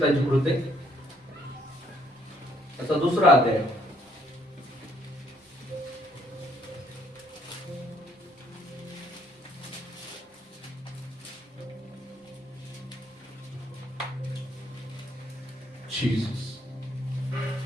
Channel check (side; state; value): both; normal; correlation 0.67